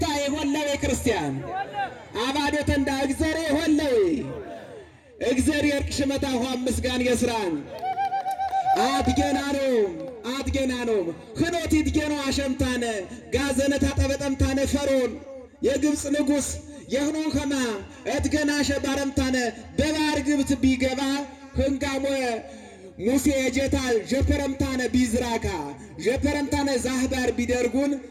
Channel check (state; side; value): identical; both; correlation 1.00